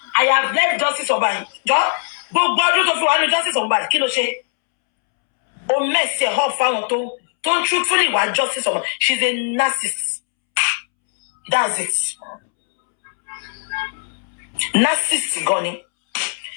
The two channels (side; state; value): right; silent; 66 dB below the other